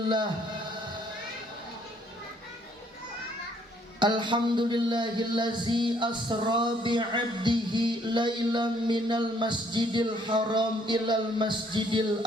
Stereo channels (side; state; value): both; normal; correlation 0.65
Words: Alhamdulillahillazi asra bi'abdihi lailan minal masjidil haram ilal masjidil